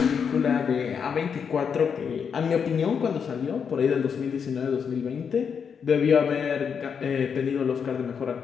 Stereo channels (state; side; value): quieter; right; 6.7 dB